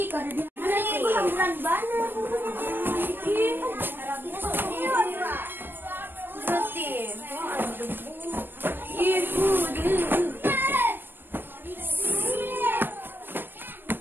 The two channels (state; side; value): late; left; 0.096 ms